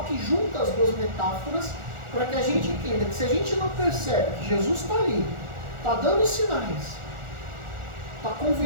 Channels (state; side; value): late; left; 1.4 ms